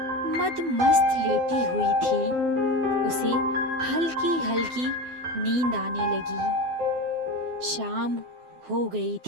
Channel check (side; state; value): left; late; 12 ms